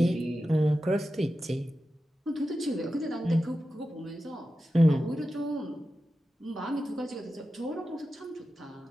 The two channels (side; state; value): both; normal; correlation 0.92